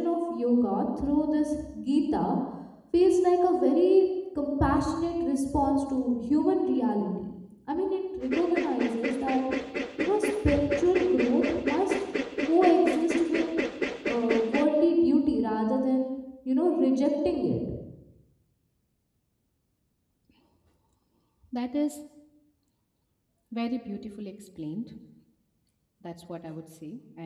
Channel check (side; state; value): both; identical; correlation 1.00